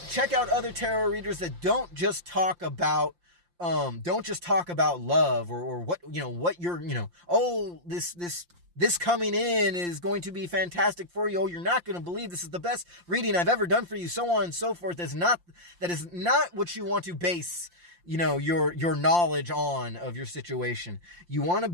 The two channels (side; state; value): left; late; 5.7 ms